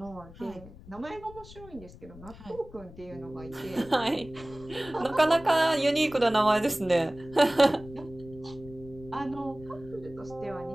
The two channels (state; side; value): noise; left; rumble, 18 dB below the sound